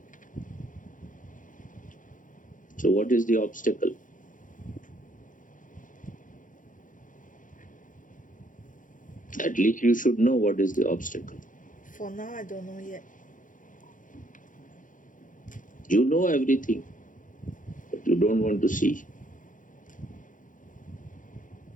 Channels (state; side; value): late; right; 0.38 ms